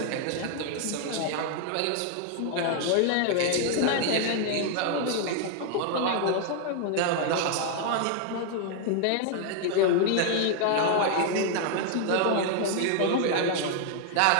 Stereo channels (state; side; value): different; both; correlation 0.00